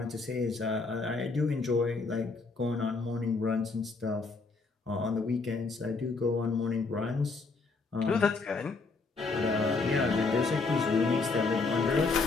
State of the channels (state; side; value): quieter; right; 4.0 dB